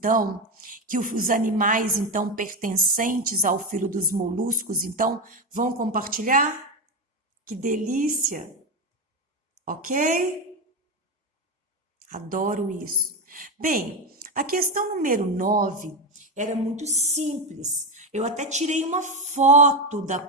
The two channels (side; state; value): both; normal; correlation 0.13